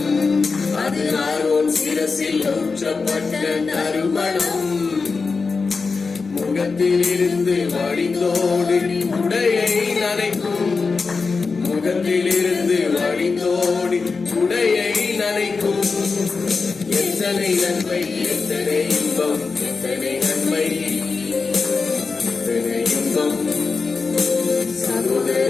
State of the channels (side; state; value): right; quieter; 4.5 dB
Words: அது ஆரோன் சிரசில் ஊற்றப்பட்ட நறுமணம். முகத்தில் இருந்து வழிந்தோடி உடையை நனைக்கும். முகத்தில் இருந்து வழிந்தோடி உடையை நனைக்கும். எத்தனை நன்மை, எத்தனை இன்பம், எத்தனை நன்மை, எத்தனை இன்பம்,